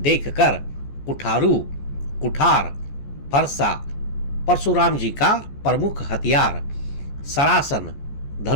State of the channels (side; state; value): right; late; 14 ms